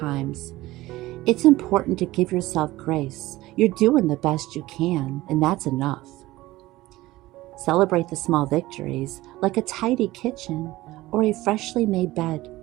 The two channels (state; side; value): quieter; left; 17.8 dB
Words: it's important to give yourself grace. You're doing the best you can, and that's enough. Celebrate the small victories, like a tidy kitchen or a freshly made bed.